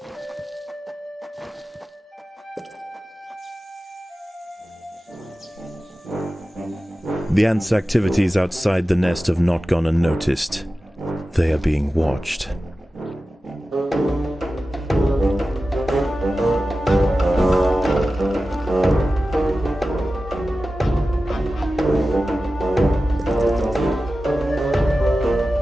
The ants' activities outside the nest have not gone unnoticed. They are being watched.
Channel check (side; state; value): both; normal; correlation 0.94